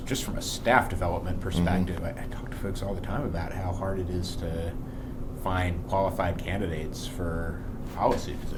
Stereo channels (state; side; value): identical; both; correlation 1.00